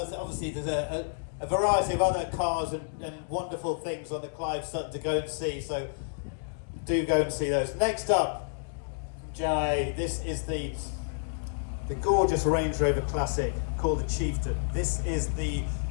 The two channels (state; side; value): silent; right; digital silence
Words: there's a variety of other cars and wonderful things on the Clive Sutton to go and see, so do go and see those. Next up, Jai, this is the gorgeous Range Rover Classic called the Chieftain. This is the